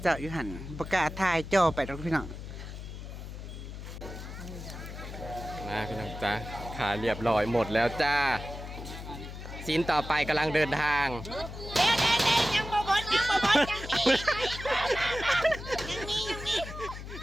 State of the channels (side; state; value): left; noise; hum, 10 dB below the sound